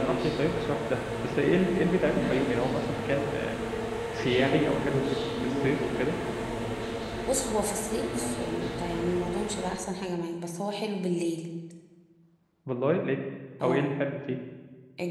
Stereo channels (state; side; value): identical; both; correlation 1.00